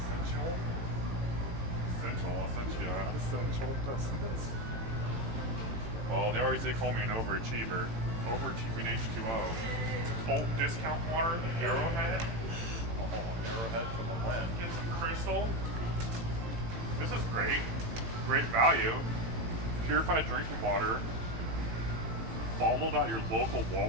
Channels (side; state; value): left; late; 18 ms